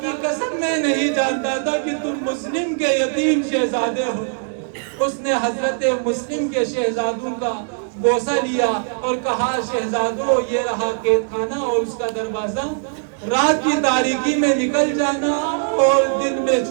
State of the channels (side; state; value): left; silent; 62 dB below the other